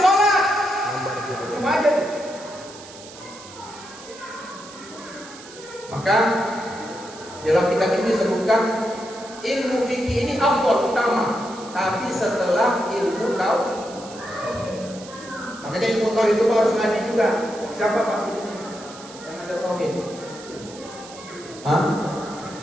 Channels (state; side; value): noise; right; hiss, 17 dB below the sound